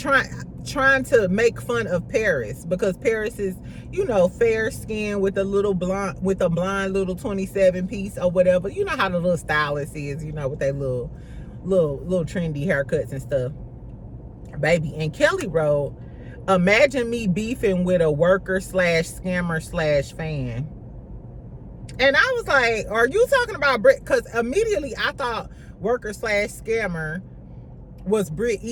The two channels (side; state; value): both; identical; correlation 1.00